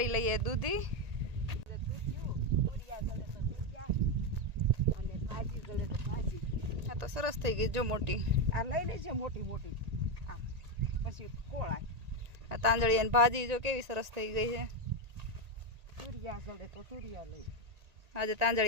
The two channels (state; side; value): late; left; 1.9 ms